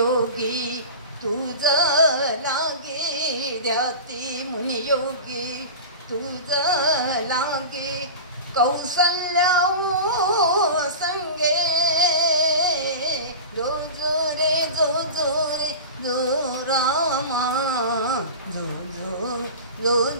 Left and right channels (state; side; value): inverted; both; correlation -0.31